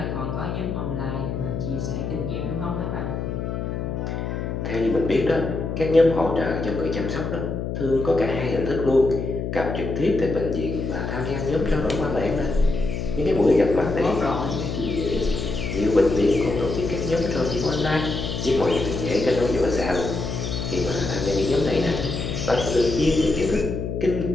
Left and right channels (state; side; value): noise; left; hum, 3 dB below the sound